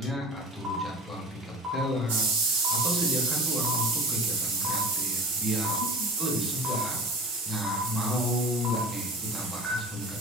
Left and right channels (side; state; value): both; normal; correlation 0.36